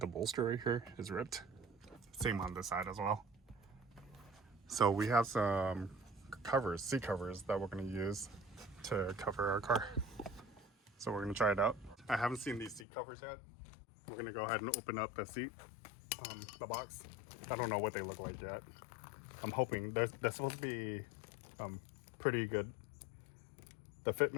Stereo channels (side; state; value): right; drops out; at 12.9 s